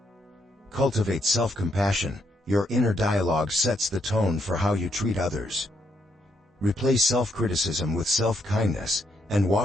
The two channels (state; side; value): normal; both; correlation 0.76